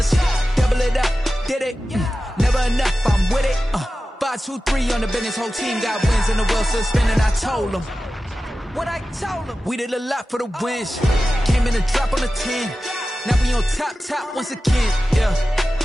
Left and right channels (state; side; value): normal; both; correlation 0.94